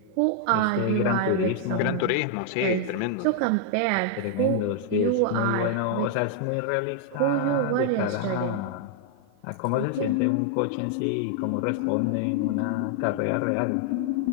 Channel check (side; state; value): both; different; correlation 0.00